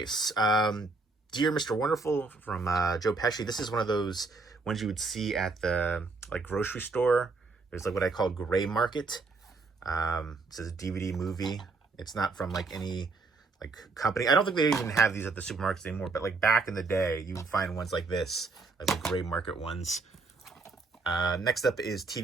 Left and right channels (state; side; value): quieter; left; 4.0 dB